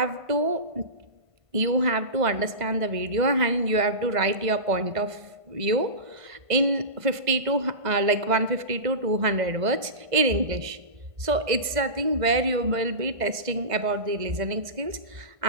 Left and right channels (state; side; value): late; left; 1.5 ms